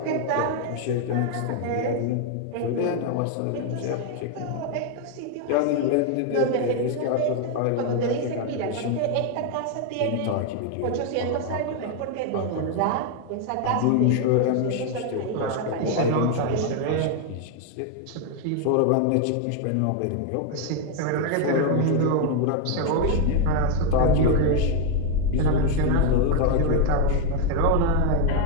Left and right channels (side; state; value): both; different; correlation 0.01